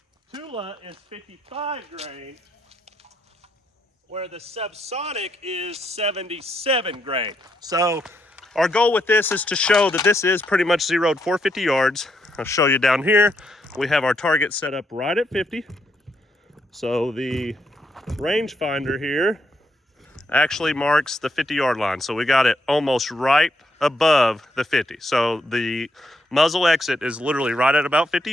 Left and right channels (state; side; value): normal; both; correlation 0.77